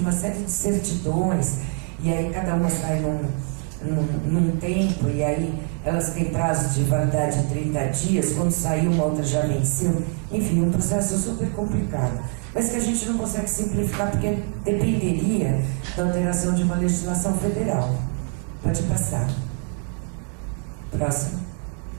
série de certidões, e aí cada uma sai num tempo, e aí elas têm prazo de validade de 30 dias, quando saiu uma outra já venceu, enfim, um processo super complicado. mas que a gente não consegue simplificar porque dependeria da alteração de uma legislação federal. Pode passar. Próximo.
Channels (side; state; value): left; quieter; 31.7 dB